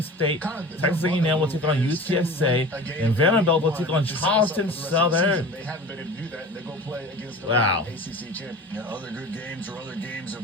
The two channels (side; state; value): both; normal; correlation 0.37